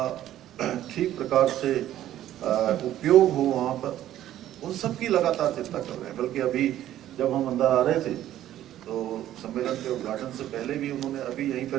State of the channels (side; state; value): left; quieter; 12.6 dB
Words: ठीक प्रकार से उपयोग हो वहाँ पर, उन सब की लगातार चिंता कर रहे हैं। बल्कि अभी जब हम अंदर आ रहे थे तो सम्मेलन के उद्घाटन से पहले भी उन्होंने अभी यहीं